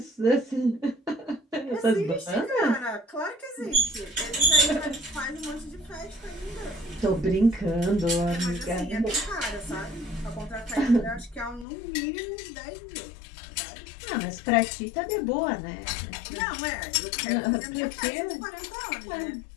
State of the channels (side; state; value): right; drops out; at 11.7 s